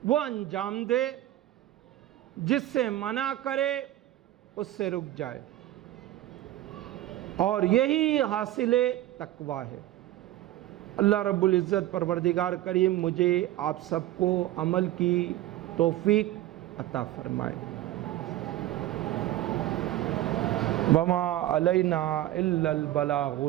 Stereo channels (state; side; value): quieter; left; 14.6 dB